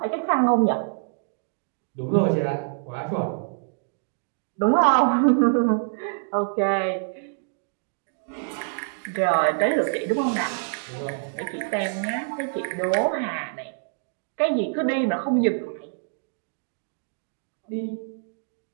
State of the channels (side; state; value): left; silent; digital silence